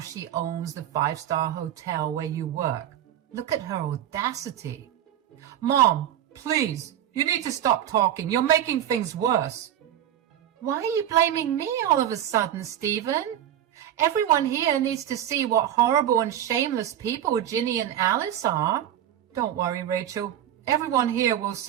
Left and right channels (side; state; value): left; quieter; 11.0 dB